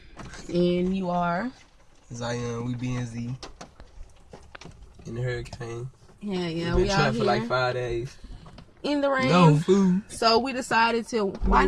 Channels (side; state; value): both; identical; correlation 1.00